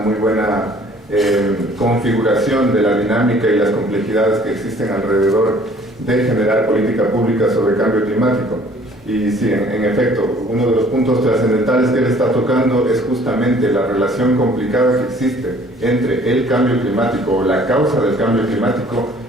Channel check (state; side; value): normal; both; correlation 0.55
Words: buena configuración de la dinámica y las complejidades que existen alrededor de generar política pública sobre cambio climático. Y sí, en efecto, uno de los puntos trascendentales que él está tocando es justamente la relación complicada que existe entre el cambio climático o la causa del cambio climático